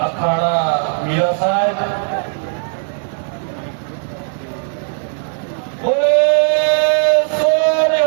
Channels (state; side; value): silent; left; digital silence